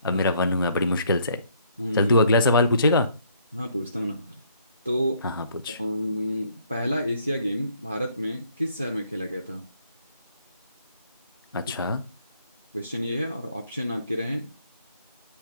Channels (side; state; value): both; inverted; correlation -0.65